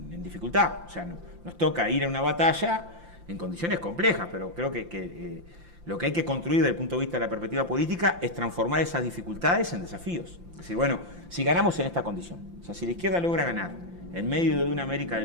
dificultad. O sea, nos toca ir a una batalla en condiciones complejas, pero creo que Lo que hay que construir desde el punto de vista de la perspectiva política es transformar esas dificultades en desafíos. Es decir, bueno, si ganamos en esta condición, o sea, si la izquierda logra ganar en medio de una América del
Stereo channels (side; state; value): left; late; 5.8 ms